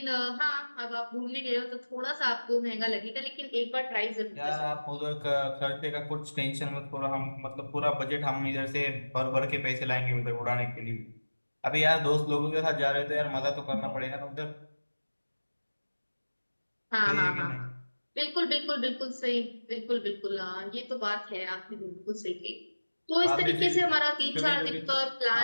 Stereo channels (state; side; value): inverted; both; correlation -1.00